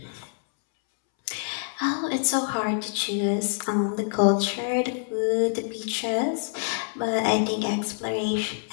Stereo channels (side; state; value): right; silent; 61 dB below the other